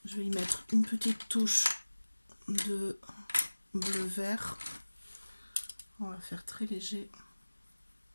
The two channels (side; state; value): both; inverted; correlation -1.00